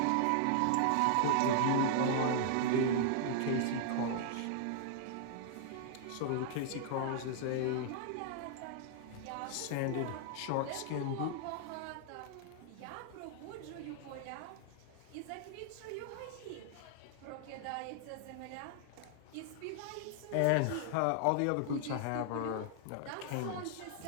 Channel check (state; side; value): different; both; correlation -0.01